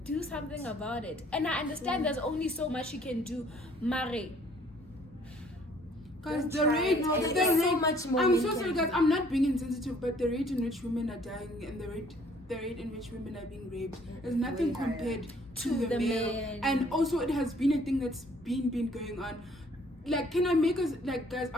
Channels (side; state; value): both; normal; correlation 0.60